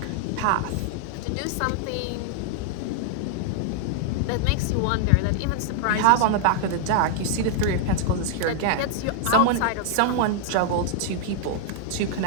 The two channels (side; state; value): both; different; correlation -0.01